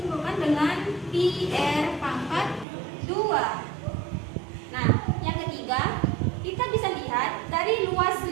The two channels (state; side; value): drops out; left; at 2.7 s